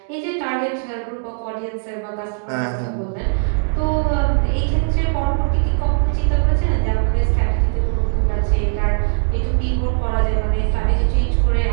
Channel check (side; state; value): left; silent; digital silence